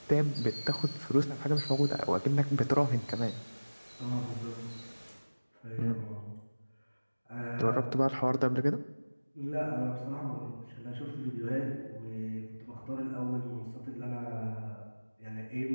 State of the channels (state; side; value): inverted; both; correlation -1.00